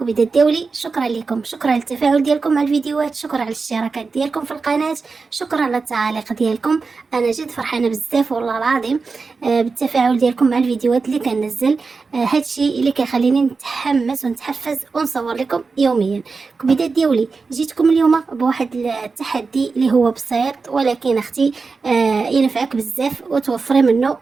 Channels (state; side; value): quieter; left; 4.5 dB